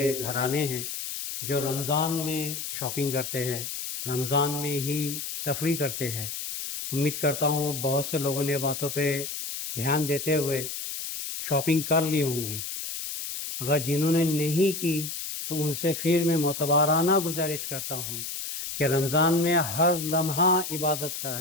گھرانے ہیں جو رمضان میں شاپنگ کرتے ہیں، رمضان میں ہی تفریح کرتے ہیں۔ امید کرتا ہوں بہت سے لوگوں نے باتوں پہ دھیان دیتے ہوئے شاپنگ کر لی ہوں گی۔ اگر جنہوں نے نہیں کی تو ان سے پھر میں معتبرانہ گزارش کرتا ہوں کہ رمضان میں ہر لمحہ عبادت کا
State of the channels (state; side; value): noise; left; hiss, 6 dB below the sound